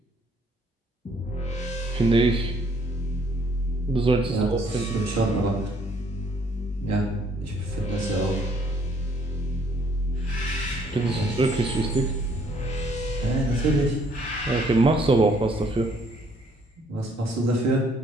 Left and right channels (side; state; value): both; normal; correlation 0.64